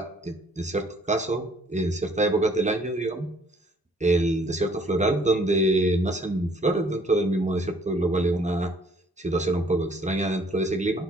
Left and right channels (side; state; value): both; normal; correlation 0.61